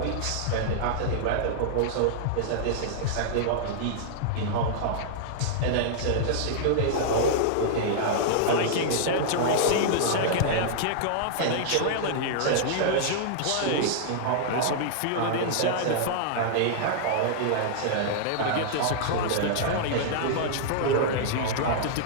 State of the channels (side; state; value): both; different; correlation -0.02